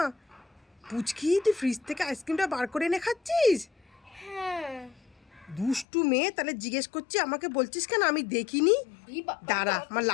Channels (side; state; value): right; drops out; at 5.9 s